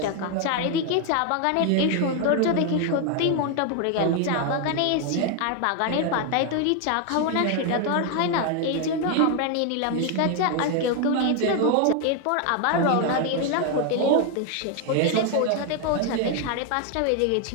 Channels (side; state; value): both; different; correlation 0.01